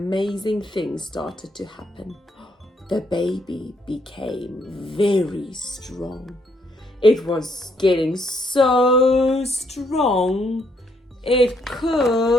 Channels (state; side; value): normal; both; correlation 0.72